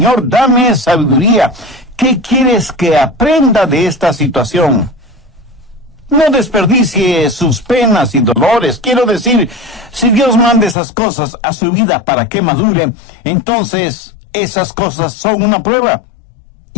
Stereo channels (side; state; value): right; drops out; at 10.8 s